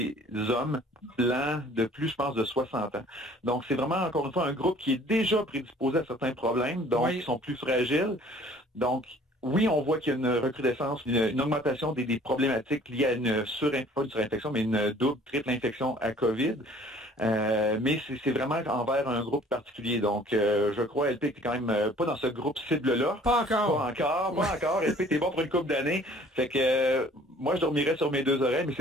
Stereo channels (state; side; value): normal; both; correlation 0.54